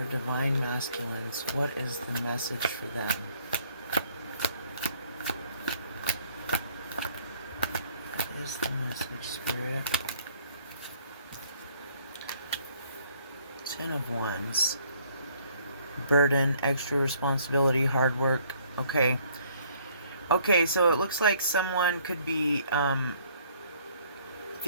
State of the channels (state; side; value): inverted; both; correlation -0.62